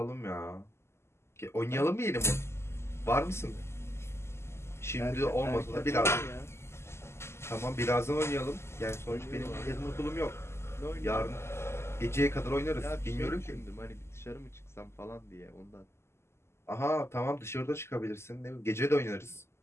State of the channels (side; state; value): right; late; 0.13 ms